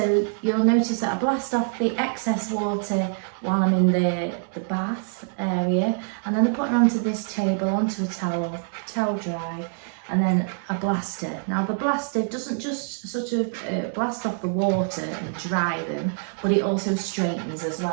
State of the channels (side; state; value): left; silent; 62 dB below the other